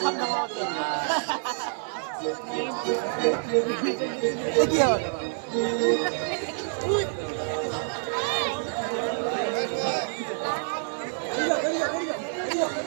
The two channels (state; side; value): silent; left; digital silence